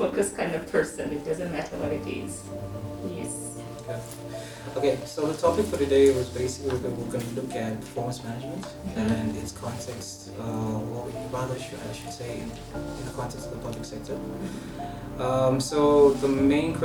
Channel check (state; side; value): identical; both; correlation 1.00